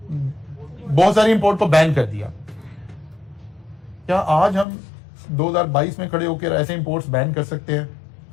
बहुत सारी इंपोर्ट को बैन कर दिया, क्या आज हम 2022 में खड़े होकर ऐसे इंपोर्ट्स बैन कर सकते हैं?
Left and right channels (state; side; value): drops out; right; at 4.7 s